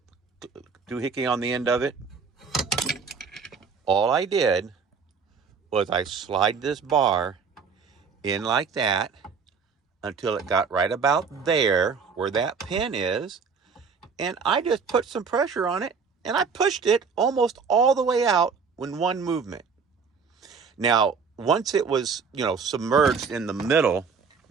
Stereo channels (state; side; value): quieter; left; 5.5 dB